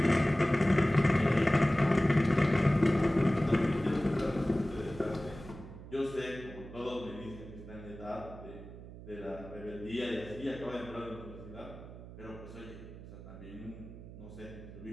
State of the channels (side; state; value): right; noise; hum, 15 dB below the sound